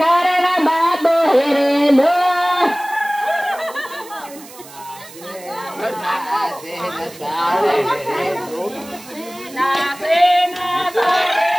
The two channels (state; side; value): noise; right; hiss, 19 dB below the sound